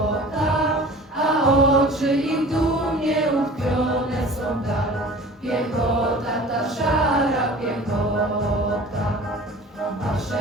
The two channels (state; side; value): normal; both; correlation 0.42